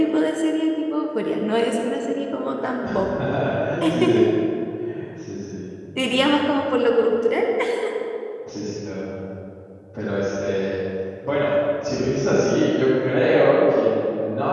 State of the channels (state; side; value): identical; both; correlation 1.00